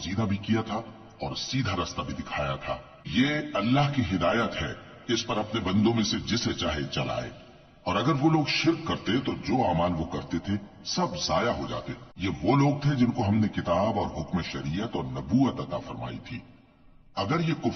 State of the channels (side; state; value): both; identical; correlation 1.00